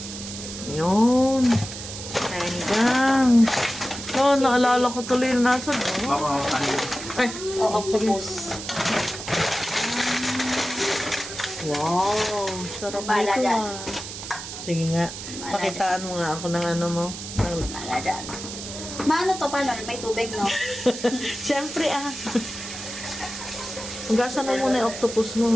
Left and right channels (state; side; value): noise; right; hiss, 9 dB below the sound